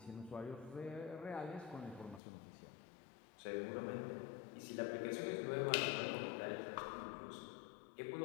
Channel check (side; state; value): right; drops out; at 2.2 s